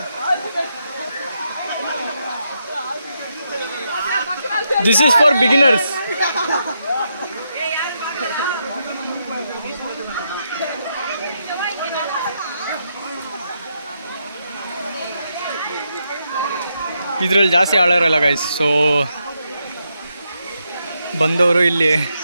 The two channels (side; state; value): both; inverted; correlation -0.81